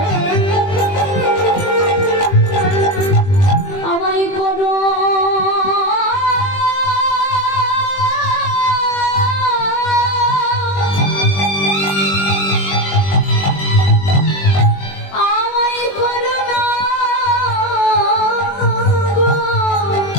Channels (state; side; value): late; right; 21 ms